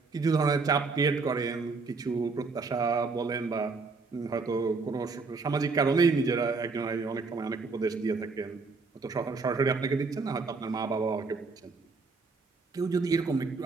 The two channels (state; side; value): quieter; left; 4.2 dB